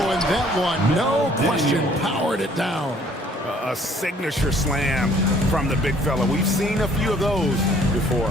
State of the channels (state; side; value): normal; both; correlation 0.58